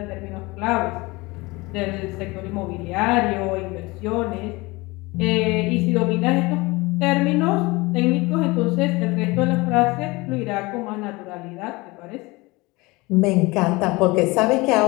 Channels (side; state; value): right; quieter; 23.4 dB